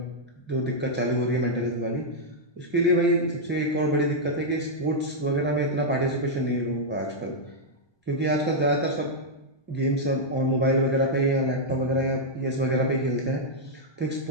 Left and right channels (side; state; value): right; late; 1.2 ms